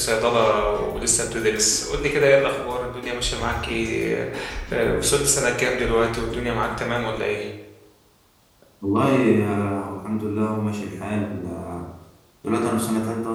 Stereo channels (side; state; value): both; identical; correlation 1.00